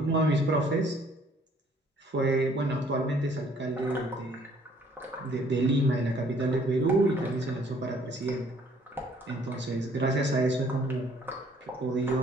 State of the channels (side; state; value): both; normal; correlation 0.60